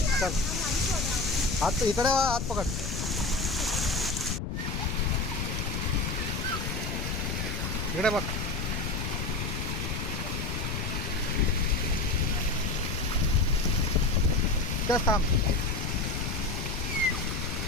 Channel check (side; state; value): left; noise; rumble, 3 dB below the sound